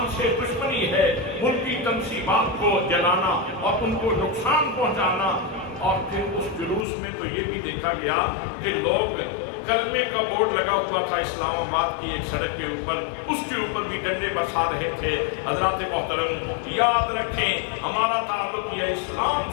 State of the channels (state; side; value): drops out; right; at 6.9 s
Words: سے دشمنی ہے۔ ملکی تنصیبات کو جلانا اور ان کو نقصان پہنچانا، اور پھر اس جلوس میں تو یہ بھی دیکھا گیا کہ لوگ کلمے کا بورڈ لگا ہوا تھا اسلام آباد کی ایک سڑک کے اوپر، اس کے اوپر بھی ڈنڈے برسا رہے تھے۔ حضرات محترم، یاد رکھیں ہمارا تعلق یہ اسلام